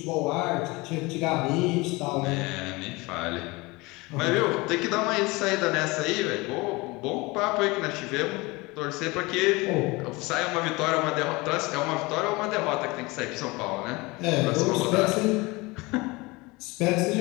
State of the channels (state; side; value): quieter; right; 23.8 dB